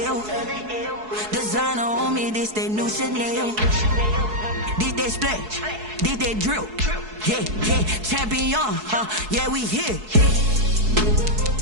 L. Designer on me, this that new Chanel. Did that splash, did that drill. Yeah, champion, yeah, we here.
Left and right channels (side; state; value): left; late; 4.7 ms